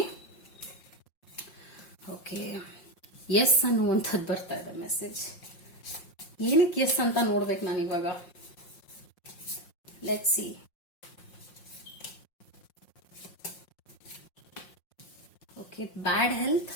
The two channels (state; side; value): late; right; 5.6 ms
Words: ಓಕೆ, ಎಸ್ ಅನ್ನುವಂಥದ್ದು ಬರ್ತಾ ಇದೆ ಮೆಸೇಜ್. ಏನಕ್ಕೆ ಎಸ್ ಅಂತ ನೋಡ್ಬೇಕು ನಾನು ಇವಾಗ. Let's see. Okay, bad health,